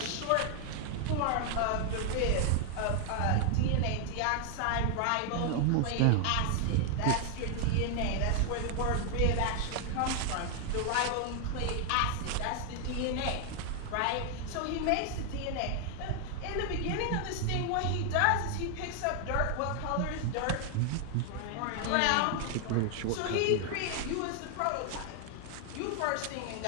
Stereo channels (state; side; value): different; both; correlation 0.00